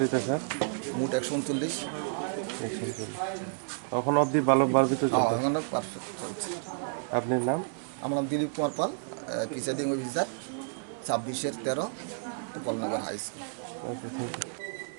স্যার? মোট 139। এখন অবধি ভালো বাড়বিতে চলছে? এখন পারফেক্ট চলছে। আপনার নাম? আমার নাম Dilip Kumar Pal, presiding officer 26/13 Gopalnagar high school. Okay, thank you.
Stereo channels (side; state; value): left; silent; 57 dB below the other